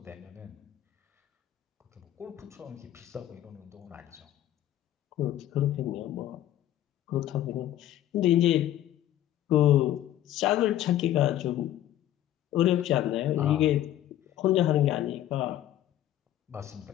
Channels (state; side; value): quieter; right; 12.6 dB